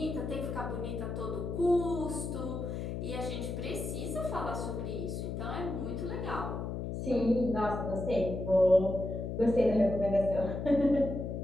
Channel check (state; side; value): noise; left; hum, 4 dB below the sound